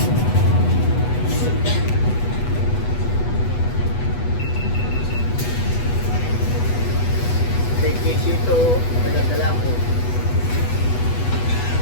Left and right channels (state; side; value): late; right; 8.2 ms